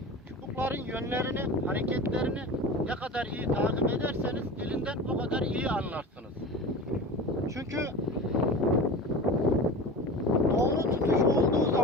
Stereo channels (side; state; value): both; normal; correlation 0.32